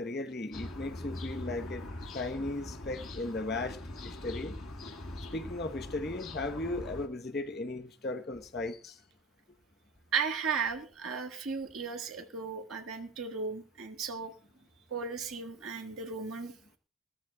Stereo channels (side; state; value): both; normal; correlation 0.36